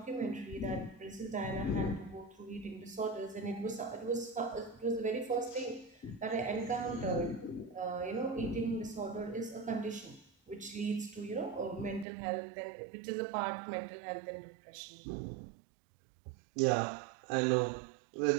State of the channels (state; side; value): drops out; left; at 12.1 s